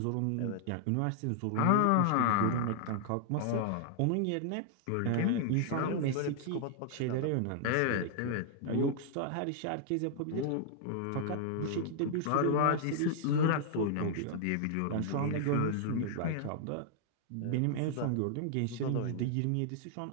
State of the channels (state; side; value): different; both; correlation 0.00